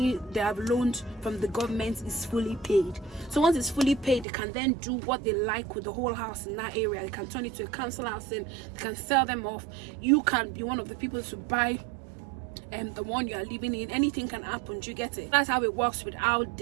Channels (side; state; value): left; drops out; at 4.2 s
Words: they have loaned from the government is fully paid. So once it's fully paid, they can then do what they like with the whole house in that area. They can turn it to a council housing, they can sell them off. You can be one of the people to buy the one you are living in. Anything can happen, do you get it? That's how it works with how